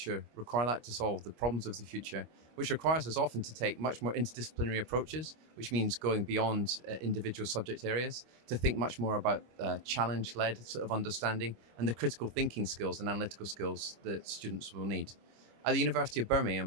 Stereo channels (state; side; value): late; left; 25 ms